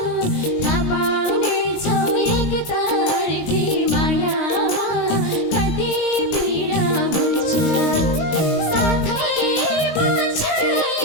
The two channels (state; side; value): late; right; 19 ms